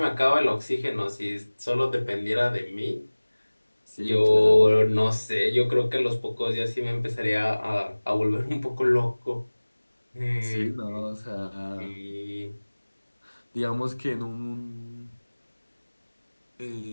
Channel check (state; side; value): inverted; both; correlation -1.00